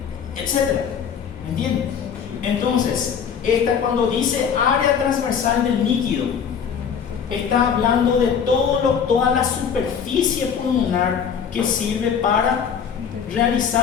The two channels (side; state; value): right; quieter; 7.3 dB